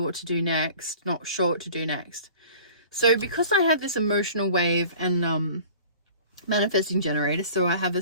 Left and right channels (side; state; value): both; inverted; correlation -0.45